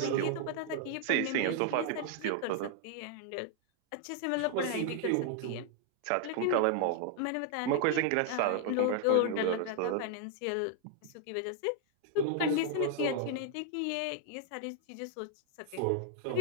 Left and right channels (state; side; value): different; both; correlation 0.00